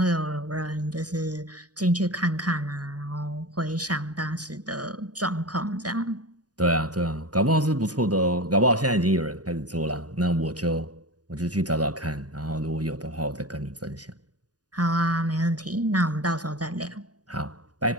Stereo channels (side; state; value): left; late; 0.68 ms